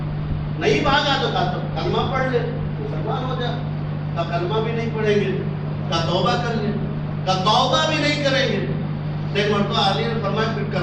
نہیں بھاگا تو کہا کلمہ پڑھ لے، مسلمان ہو جا، کہا کلمہ بھی نہیں پڑھیں گے، کہا توبہ کر لے، کہا توبہ بھی نہیں کریں گے۔ ایک مرتبہ علی نے فرمایا پھر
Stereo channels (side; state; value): both; identical; correlation 1.00